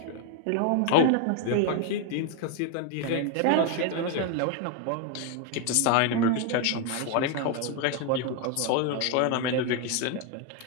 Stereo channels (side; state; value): both; different; correlation 0.01